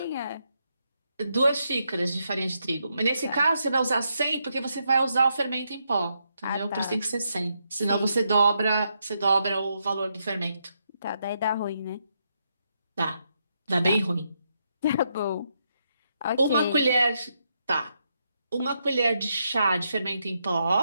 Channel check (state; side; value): inverted; both; correlation -0.80